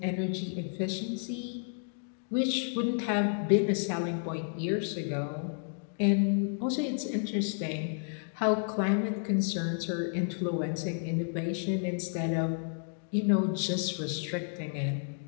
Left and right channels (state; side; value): silent; right; 57 dB below the other